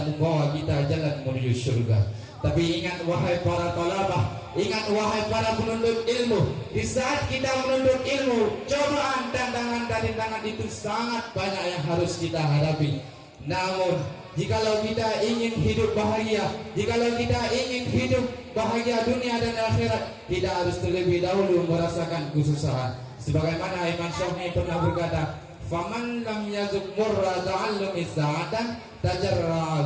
membawa kita jalan menuju surga. Tapi ingat wahai para talabah, ingat wahai para penuntut ilmu, di saat kita menuntut ilmu, cobaan dan tantangan itu sangat banyak yang harus kita hadapi. Namun jikalau kita ingin hidup bahagia, jikalau kita ingin hidup bahagia dunia dan akhirat, tidak harus terlebih dahulu merasakan kesusahan. Sebagaimana Imam Syafi'i pernah berkata, "Faman lam yazuk murra ta'allumi sa'atan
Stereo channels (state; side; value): identical; both; correlation 1.00